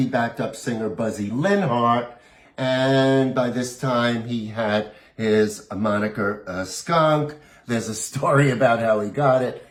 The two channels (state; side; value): identical; both; correlation 1.00